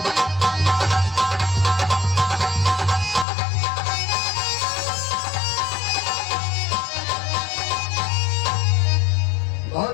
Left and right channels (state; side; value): drops out; right; at 3.2 s